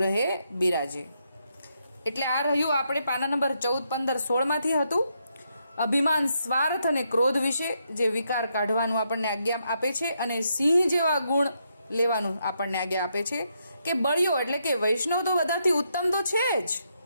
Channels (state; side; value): inverted; both; correlation -0.79